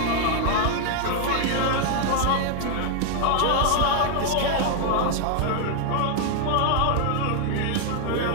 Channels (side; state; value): both; different; correlation 0.00